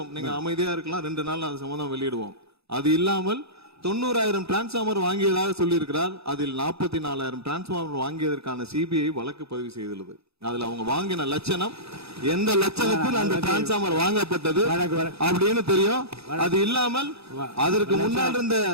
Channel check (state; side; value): late; left; 0.79 ms